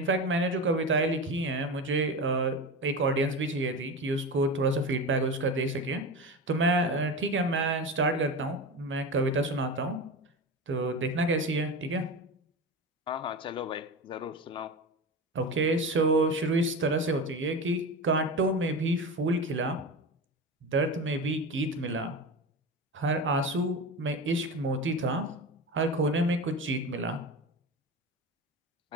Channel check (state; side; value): normal; both; correlation 0.25